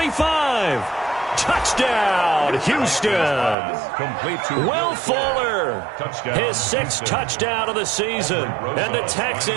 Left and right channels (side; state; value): left; drops out; at 3.6 s